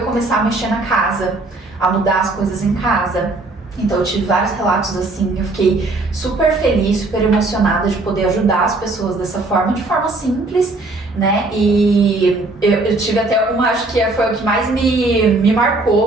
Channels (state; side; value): quieter; left; 3.1 dB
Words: começar a mexer na casa, a mudar as coisas em casa. Então eu tive vários relatos assim, eu fiquei super feliz, super emocionada de poder ajudar as pessoas dessa forma, de forma simples, né? E eu tive até uma, acho que foi o que mais me